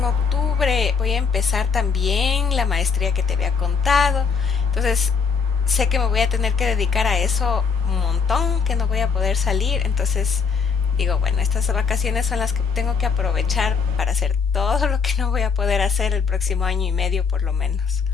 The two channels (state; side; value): quieter; right; 5.6 dB